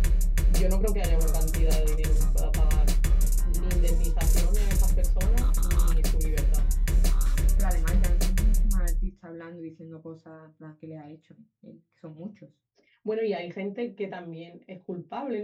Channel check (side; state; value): both; identical; correlation 1.00